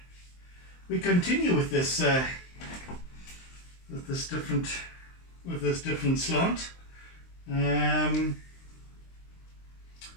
We continue with this different slant.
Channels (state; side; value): late; right; 23 ms